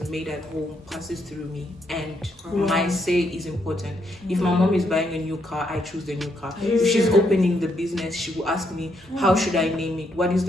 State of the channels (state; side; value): normal; both; correlation 0.76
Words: made at home passes through me, and my say is important. If my mom is buying a new car, I choose the new car. If she's opening the business, she will ask me, how should I name it? What is